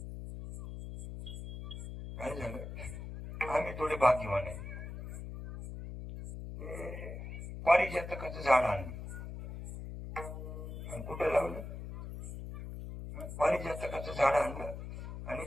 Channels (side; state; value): left; noise; hum, 9 dB below the sound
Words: काय झालं, आम्ही थोडे भाग्यवान आहे. पारिजातकाचं झाड आणलं आणि कुठं लावलं? पारिजातकाचं झाड आणलं आणि